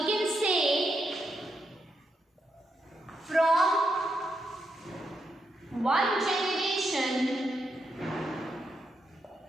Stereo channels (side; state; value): both; normal; correlation 0.83